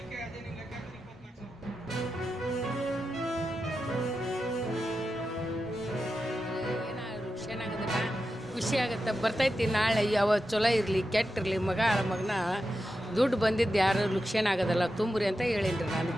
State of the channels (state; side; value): normal; both; correlation 0.90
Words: ಅದೇನಿಲ್ಲ ಲೆಕ್ಕ 24,000. ಖುಷಿ ಆಗುತ್ತೆ, ಬರ್ತೈತಿ. ನಾಳೆ ಯಾವ ಚಲೋ ಇರಲಿ ಕೆಟ್ಟಿರಲಿ, ಮಗನ ದುಡ್ಡು ಬಂದಿದ್ದು ಯಾರು ಲುಕ್ಷೇನ ಆಗೋದಲ್ಲ, ತುಂಬ್ರಿ ಅಂತ ಹೇಳೀನಿ ನಾನು.